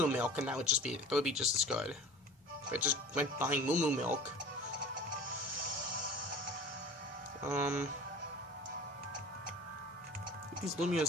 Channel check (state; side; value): normal; both; correlation 0.41